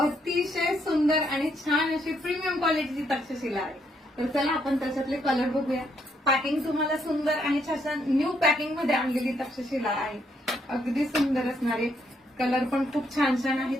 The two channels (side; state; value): both; normal; correlation 0.74